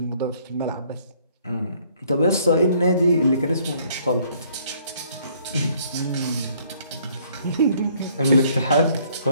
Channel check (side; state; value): both; inverted; correlation -0.63